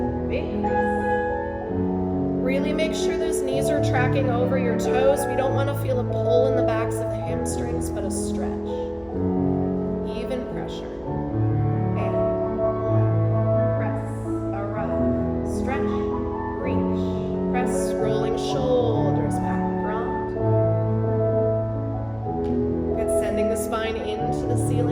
Big press. Really make sure those knees are tracking over your toes. We don't want to feel a pull in the backs of the hamstrings, but a stretch. Even pressure. And 1. Press, arrive, stretch, reach. Press, rolling shoulders back, round. Good, sending the spine into the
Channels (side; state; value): both; identical; correlation 1.00